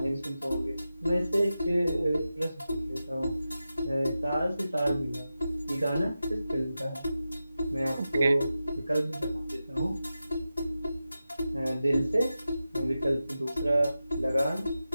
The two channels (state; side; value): inverted; both; correlation -0.92